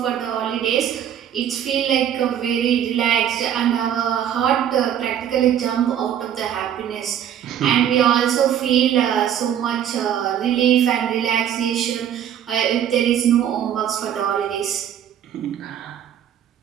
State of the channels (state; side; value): quieter; left; 9.8 dB